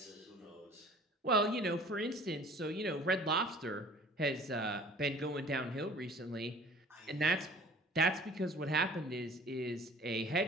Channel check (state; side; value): normal; both; correlation 0.48